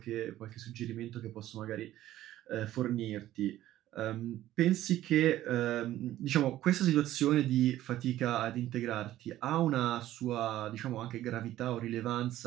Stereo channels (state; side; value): quieter; left; 13.9 dB